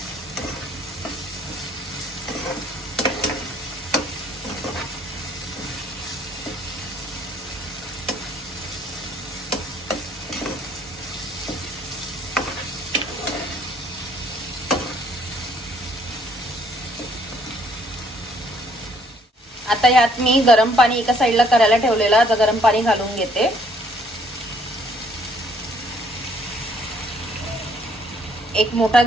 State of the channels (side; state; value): both; normal; correlation 0.64